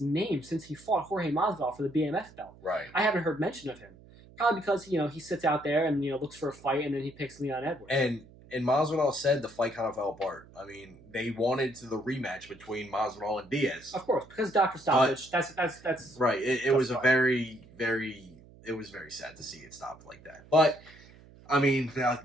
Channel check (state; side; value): noise; right; hum, 23 dB below the sound